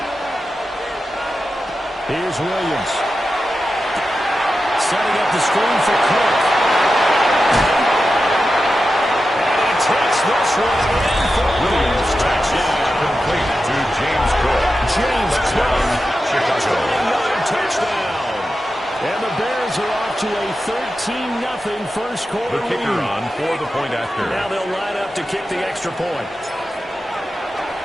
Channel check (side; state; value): both; normal; correlation 0.91